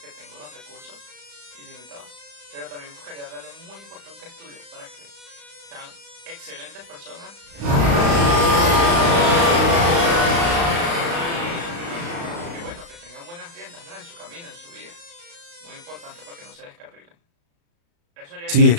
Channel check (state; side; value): late; left; 35 ms